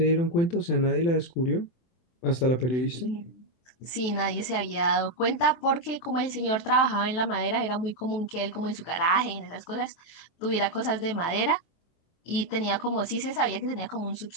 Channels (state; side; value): late; right; 23 ms